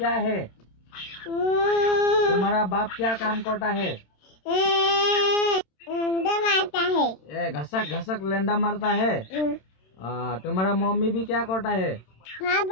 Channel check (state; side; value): late; right; 27 ms